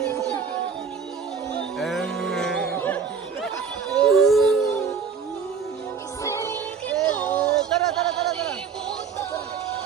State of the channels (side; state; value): left; quieter; 6.1 dB